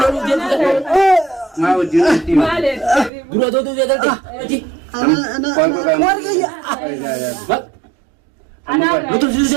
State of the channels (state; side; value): drops out; left; at 3.1 s